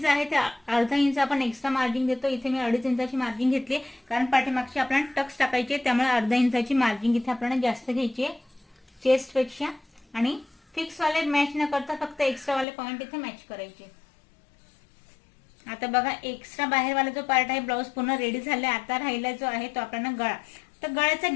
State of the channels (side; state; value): right; drops out; at 12.7 s